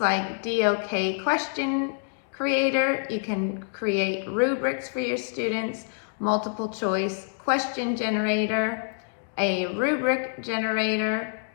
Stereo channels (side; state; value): right; silent; digital silence